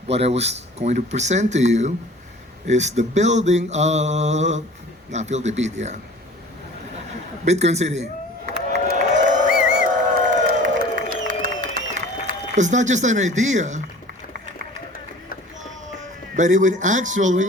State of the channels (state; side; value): normal; both; correlation 0.45